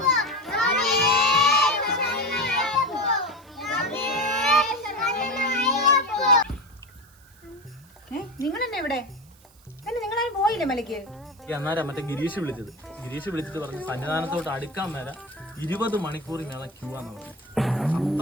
നിങ്ങൾ തന്നെ ഇവിടെ നിങ്ങളാരും പോയില്ലേ മലയ്ക്ക്? അന്നേരം മറ്റേ ഗിരീഷ് വിളിച്ചിട്ട് പറഞ്ഞു സന്നിധാനത്തോട്ട് അടുക്കാൻ മേല 20 മണിക്കൂർ മേള ക്യൂ ആന്ന് പറഞ്ഞു.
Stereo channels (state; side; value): noise; right; hiss, 28 dB below the sound